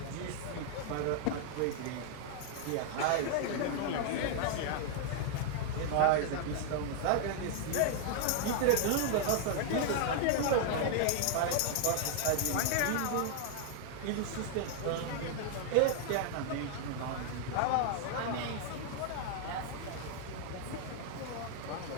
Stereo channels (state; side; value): different; both; correlation 0.00